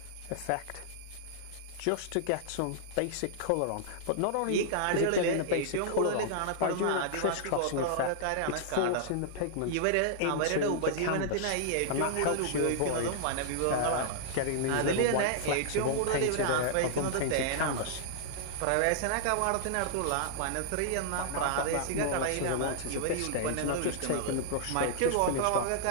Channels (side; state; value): both; different; correlation -0.01